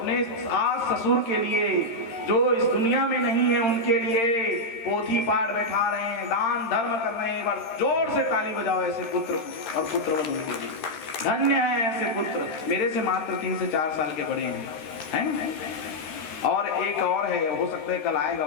सास ससुर के लिए जो इस दुनिया में नहीं है, उनके लिए पोथी पाठ बैठा रहे हैं, दान धर्म कर रहे हैं। एक बार जोर से ताली बजाओ ऐसे पुत्र और पुत्रवधू के लिए। धन्य है ऐसे पुत्र। मेरे से मात्र 3 से 4 साल के बड़े हैं, है ना। और एक और है, हो सकता है कल आएगा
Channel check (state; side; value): late; right; 13 ms